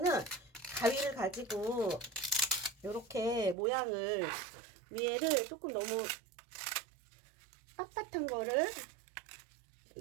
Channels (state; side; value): drops out; left; at 3.6 s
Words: 가위를 가지고 이렇게 모양을 위에를 조금 너무 빳빳한 거를